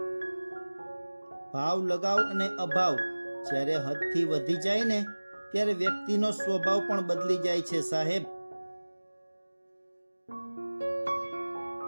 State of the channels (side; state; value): both; inverted; correlation -1.00